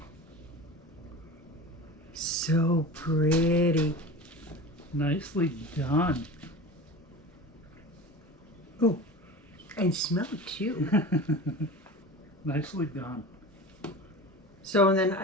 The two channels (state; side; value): normal; both; correlation 0.33